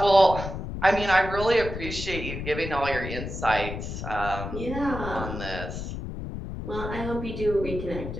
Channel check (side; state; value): left; noise; rumble, 7 dB below the sound